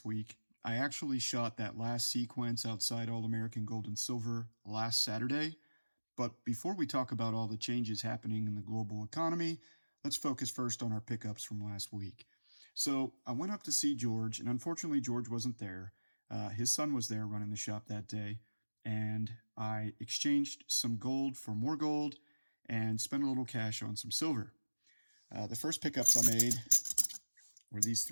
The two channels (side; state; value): both; inverted; correlation -1.00